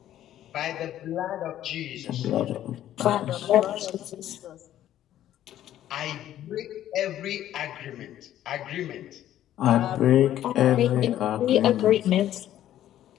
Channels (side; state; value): right; quieter; 12.2 dB